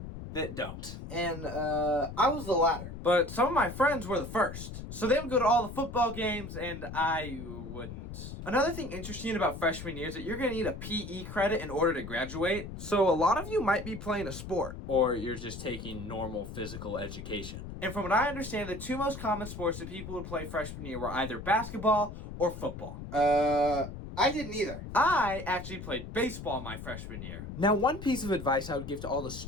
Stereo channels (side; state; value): left; noise; rumble, 10 dB below the sound